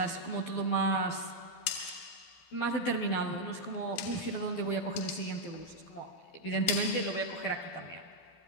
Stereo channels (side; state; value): right; late; 12 ms